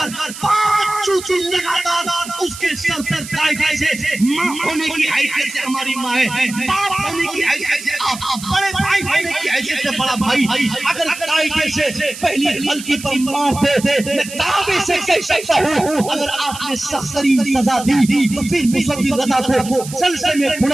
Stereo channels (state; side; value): noise; right; hiss, 12 dB below the sound